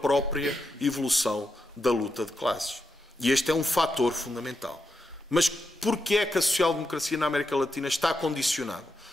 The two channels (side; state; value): both; normal; correlation 0.85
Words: evolução da luta de classes. E este é um fator fundamental. Mas porquê é que a social-democracia na América Latina está condicionada?